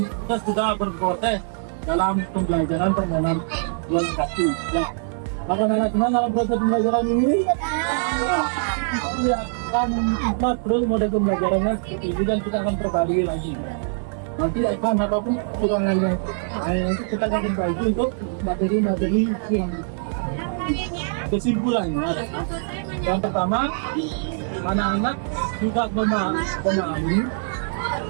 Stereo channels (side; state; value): left; silent; 63 dB below the other